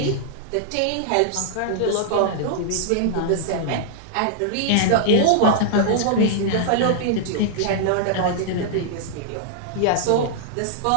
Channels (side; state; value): both; different; correlation -0.01